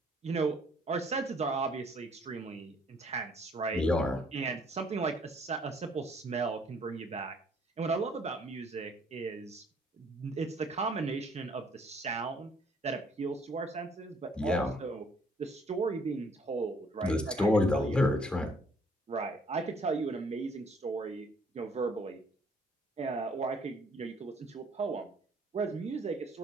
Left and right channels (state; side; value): normal; both; correlation 0.62